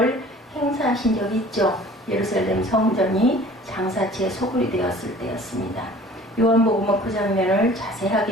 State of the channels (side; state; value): both; normal; correlation 0.48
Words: 행사하신 적이 있죠. 예루살렘 성전이 장사치에 소굴이 되었을 때였습니다. 요한복음은 그 장면을